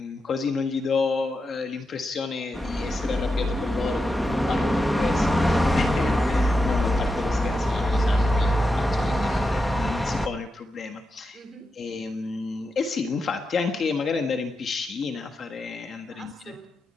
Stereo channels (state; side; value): normal; both; correlation 0.88